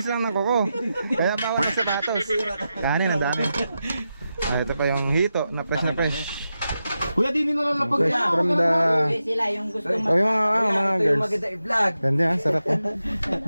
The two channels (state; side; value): inverted; both; correlation -0.90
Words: lang ng kuko. Kaya bawal na sapatos. Kanin, ang dami. Ito pa yung hito na fresh na fresh. Kuya, di nila lang napag- Fresh from the... Sila yung gusto Oh, yung mga girls. i-vlog. Ganda yan, sarap yan.